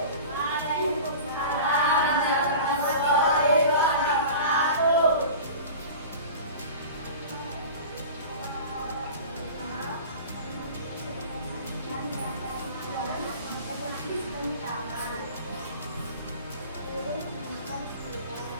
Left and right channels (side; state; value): both; inverted; correlation -0.37